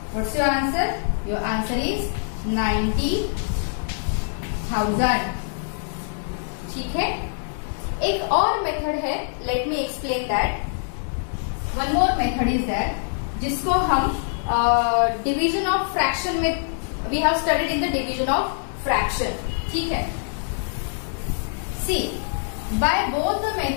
what's your answer? Your answer is 90,000. ठीक है. एक और method है. Let me explain that. One more method is that जिसको हम division of fraction में we have studied in the division of fraction. ठीक है. सी, by both the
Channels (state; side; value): silent; right; digital silence